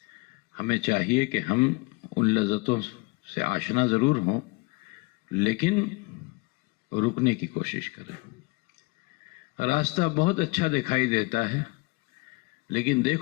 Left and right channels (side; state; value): right; quieter; 25.6 dB